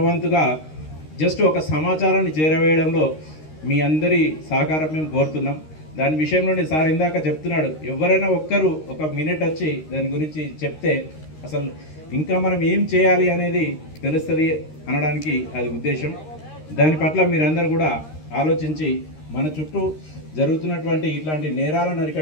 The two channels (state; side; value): late; right; 13 ms